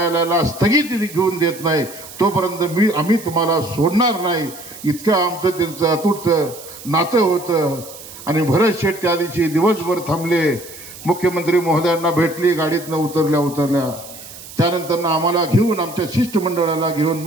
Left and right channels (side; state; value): right; noise; hiss, 16 dB below the sound